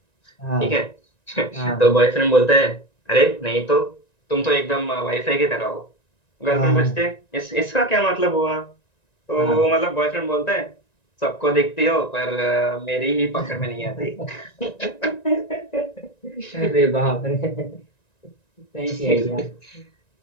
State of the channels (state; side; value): late; right; 1.9 ms